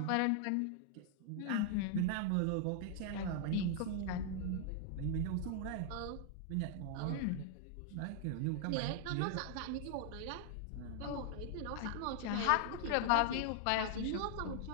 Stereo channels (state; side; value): different; both; correlation 0.00